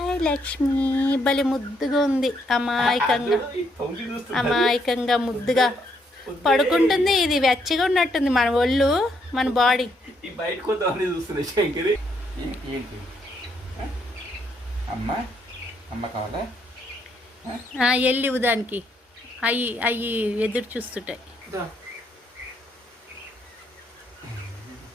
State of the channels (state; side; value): normal; both; correlation 0.73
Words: లక్ష్మి, భలే ముద్దుగా ఉంది. అమాయకంగా ముద్దుగా పడుకుంటుంది. ఇది వెచ్చగా ఉన్నట్టుంది మన ఒళ్ళు, మన బాడీ. వెళ్ళి దానికి అవి ఎదురు చూస్తుంటాయి.